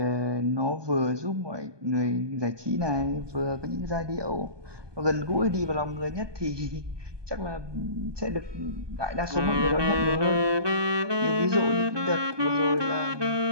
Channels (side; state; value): left; late; 1.2 ms